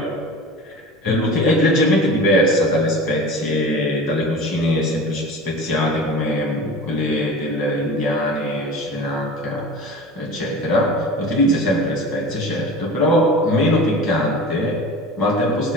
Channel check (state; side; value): normal; both; correlation 0.35